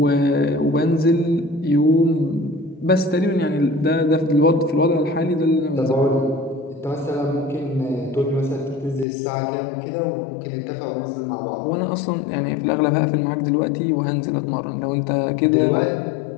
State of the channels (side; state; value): right; drops out; at 9.1 s